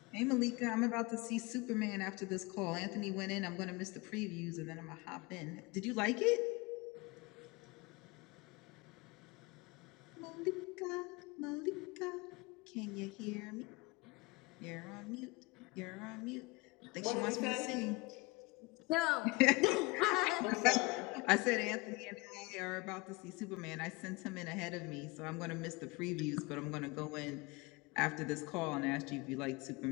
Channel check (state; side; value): quieter; right; 24.5 dB